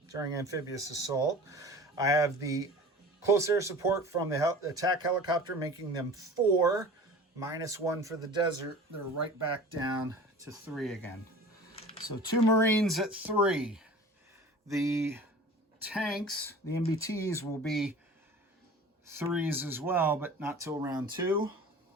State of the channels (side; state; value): both; normal; correlation 0.40